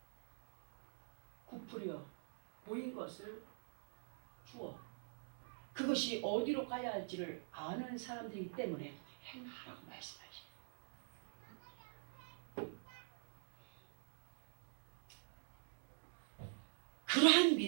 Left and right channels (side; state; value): left; silent; digital silence